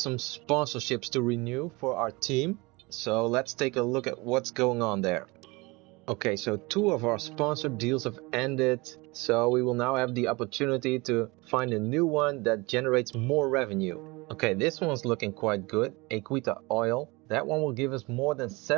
some sponsorships to renew for our team. So let's take a look at what's going on there. Okay, so 2 of our sponsored deals have ended. So we will now have the opportunity to find a new one that generates more revenue. Okay, this one's looking quite good. a.k.a. Oil. That one will give us more than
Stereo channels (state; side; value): quieter; left; 24.9 dB